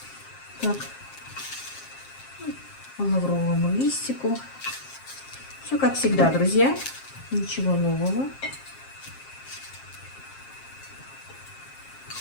Так, по лавровому листику. Все как всегда, друзья. Ничего нового.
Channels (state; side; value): late; right; 7.5 ms